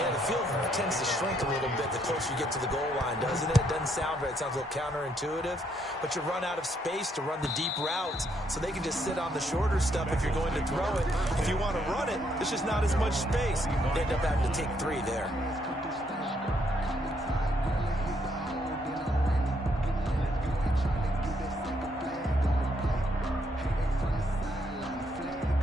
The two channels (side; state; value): both; normal; correlation 0.73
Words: the field tends to shrink a little bit the closer you get to the goal line, doesn't it? It doesn't sound right. It sounds a little counterintuitive, but you run out of space to run the deep routes, so they can just sit on the shorter stuff if you're going to throw it. If you want to run it, there's just not as much space. They end up having to take 3 there.